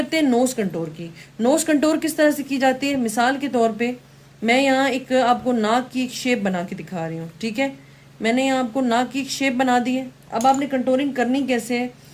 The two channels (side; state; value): both; identical; correlation 1.00